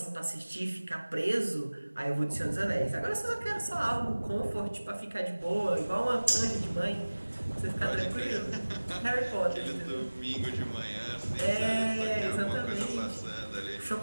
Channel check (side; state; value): both; inverted; correlation -1.00